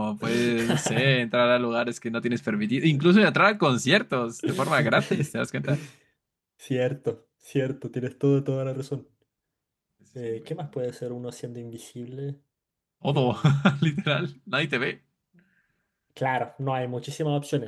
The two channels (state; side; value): identical; both; correlation 1.00